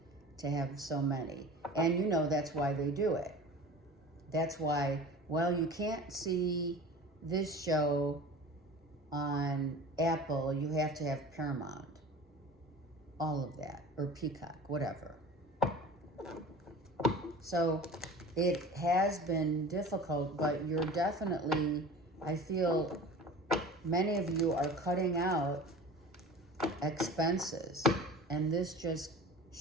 to have so many. And that's why they do it. That's why, well, you can't see this show on Apple, you have to have Paramount. All of that, or Peacock, whatever. So it has been difficult, but you're definitely, I feel many of you are cutting out expenses, and this just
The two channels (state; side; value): normal; both; correlation 0.38